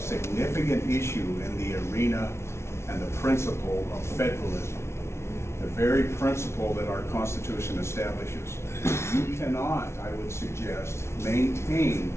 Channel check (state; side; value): late; right; 0.13 ms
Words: issue in the arena and the principle of federalism, the very principle that our Constitution establishes. You cannot, I would suggest, maintain